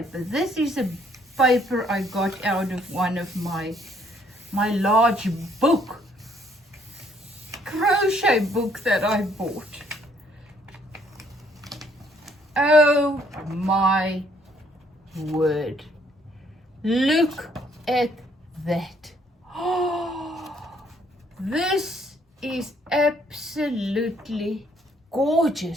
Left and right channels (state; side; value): normal; both; correlation 0.66